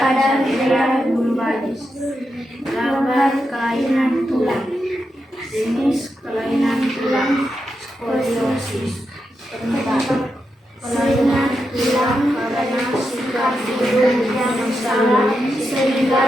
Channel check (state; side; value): normal; both; correlation 0.86